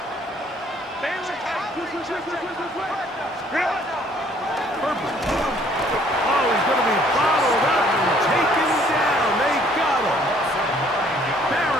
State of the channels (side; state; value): both; normal; correlation 0.61